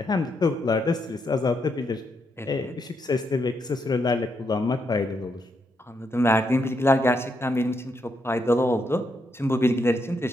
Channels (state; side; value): normal; both; correlation 0.79